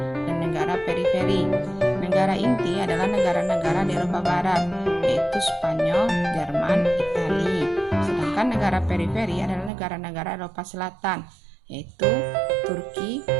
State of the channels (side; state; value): left; drops out; at 9.7 s